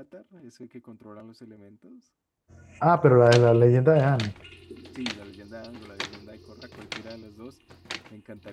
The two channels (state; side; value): identical; both; correlation 1.00